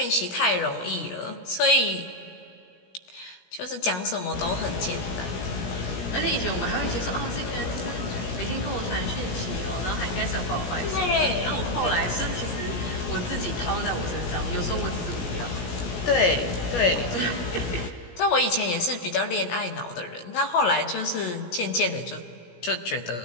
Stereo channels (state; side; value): late; right; 17 ms